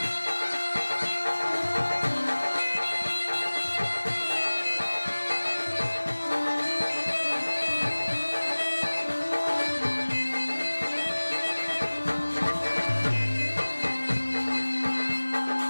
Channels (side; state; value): both; inverted; correlation -1.00